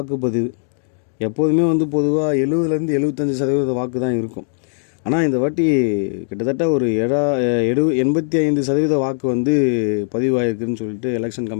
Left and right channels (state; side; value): silent; right; digital silence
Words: எப்போதுமே பொதுவாக 70-75% 75% வாக்கு தான் இருக்கும். ஆனால் இந்த வாட்டி கிட்டத்தட்ட ஒரு 85% வாக்கு பதிவாயிருக்குன்னு சொல்லிட்டு எலெக்ஷன்